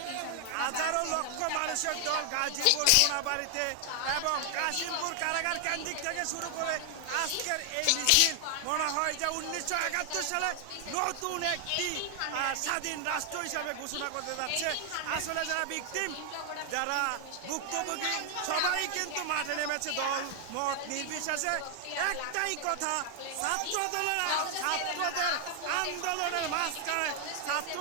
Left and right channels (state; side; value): different; both; correlation 0.00